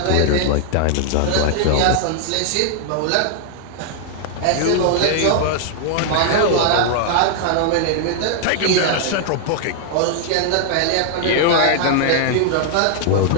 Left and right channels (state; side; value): different; both; correlation 0.00